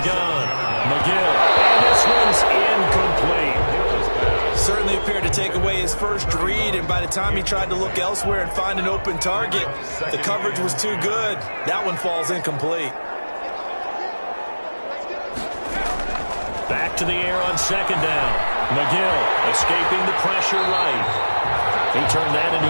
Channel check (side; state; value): both; inverted; correlation -1.00